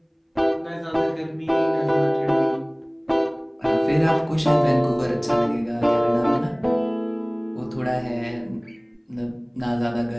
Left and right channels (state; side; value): identical; both; correlation 1.00